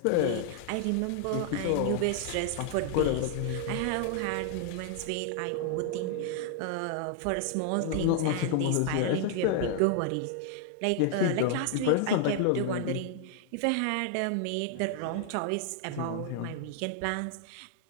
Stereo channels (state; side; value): different; both; correlation 0.00